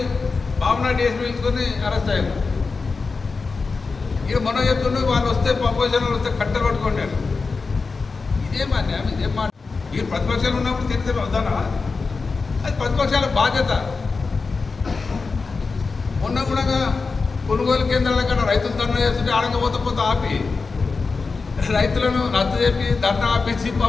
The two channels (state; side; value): quieter; right; 4.4 dB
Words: బాబునాడు డిఎస్పీ పిలుచుకొని అరెస్ట్ అయ్యారు. ఇక మొన్న చెప్తుండే వాళ్ళు వస్తే అపోజిషన్ వస్తే కట్టెలు పట్టుకోండి. ఇదేం అన్యాయం, ఇదేం మాట. మీరు ప్రతిపక్షాలు ఉన్నప్పుడు తిరిగితే వద్దానా? అది ప్రతిపక్షాల బాధ్యత. మొన్న కూడా కొనుగోలు కేంద్రాల కన్నా రైతులు ధర్నా చేస్తుంటే ఆడకపోతే ఆపి రైతులను రద్దు చెప్పి ధర్నా ఆపించి